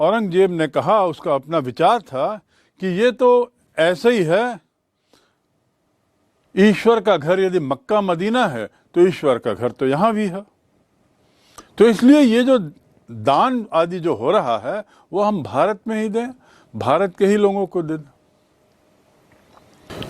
ने कहा, उसका अपना विचार था कि ये तो ऐसे ही है, ईश्वर का घर यदि मक्का मदीना है तो ईश्वर का घर तो यहाँ भी है, तो इसलिए ये जो दान आदि जो हो रहा है वो हम भारत में ही दें, भारत के ही लोगों को दे दें।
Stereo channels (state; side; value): identical; both; correlation 1.00